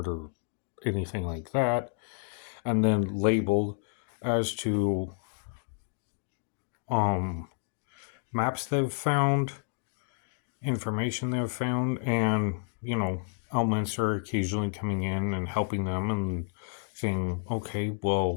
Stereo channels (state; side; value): silent; right; 58 dB below the other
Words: or anything like that, and then labeled as to maps they've found, information they've found, and elements are occasionally coming in and helping them and saying, okay,